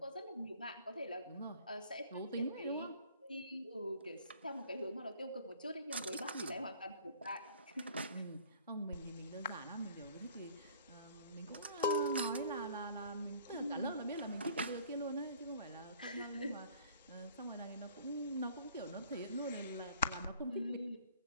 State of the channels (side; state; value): both; inverted; correlation -0.53